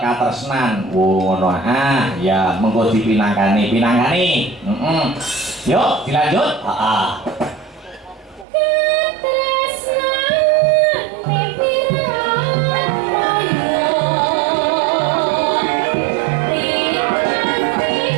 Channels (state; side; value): drops out; left; at 8.5 s